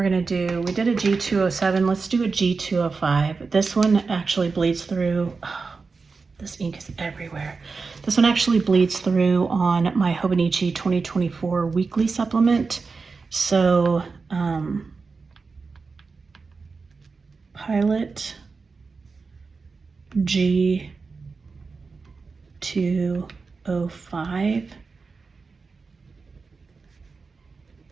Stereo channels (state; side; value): quieter; left; 4.5 dB